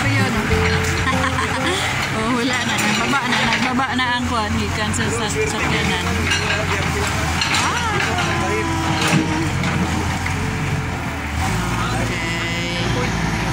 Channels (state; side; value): identical; both; correlation 1.00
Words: yun. Oh, wala na. Nagbaba na ang kuhan. Gikan sa sakyanan.